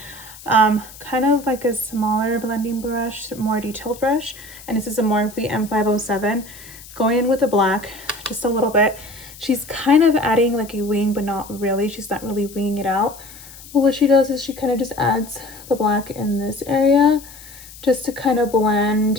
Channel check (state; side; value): noise; left; hiss, 18 dB below the sound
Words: kind of like a smaller blending brush, more detailed brush, and this is a Morphe M507, going in with the black just a little bit. She's kind of adding like a wing, but not really. She's not really winging it out. But what she does is she kind of just adds the black in this area just to kind of